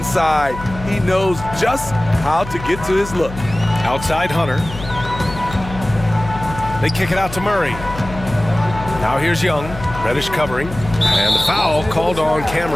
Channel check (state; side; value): noise; left; hum, 11 dB below the sound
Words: He knows just how to get to his look. Outside Hunter. They kick it out to Murray. Now here's Young. Reddish covering. And the foul called on Cam